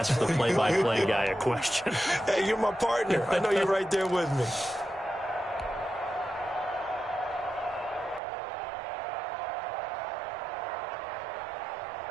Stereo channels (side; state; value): left; drops out; at 8.2 s